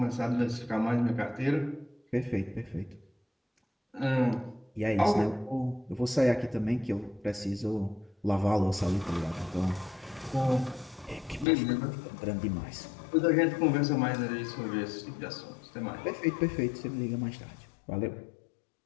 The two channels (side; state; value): right; drops out; at 11.5 s